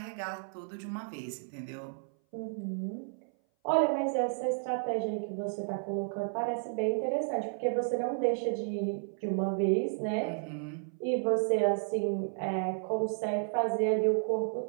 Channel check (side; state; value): left; silent; 56 dB below the other